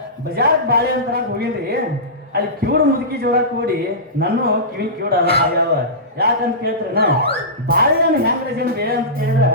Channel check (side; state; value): both; normal; correlation -0.19